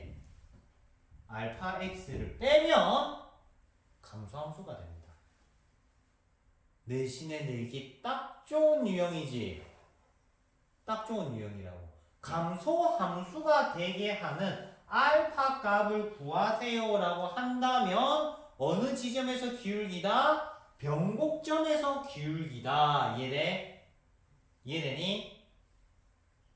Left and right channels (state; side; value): identical; both; correlation 1.00